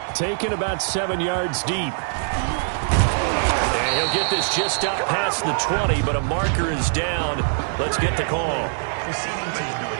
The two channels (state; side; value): silent; left; digital silence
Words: Taken about 7 yards deep. And he'll get this just up past the 20, but a marker is down. Let's get the call.